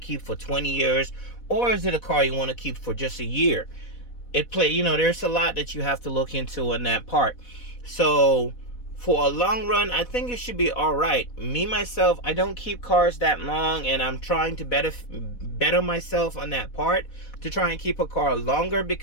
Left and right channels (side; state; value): right; late; 4.1 ms